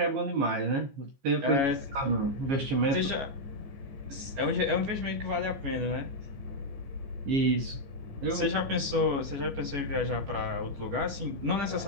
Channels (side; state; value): left; late; 14 ms